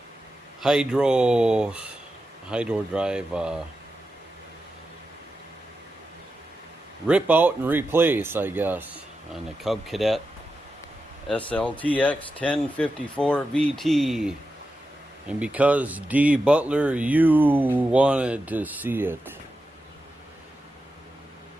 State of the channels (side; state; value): both; normal; correlation 0.90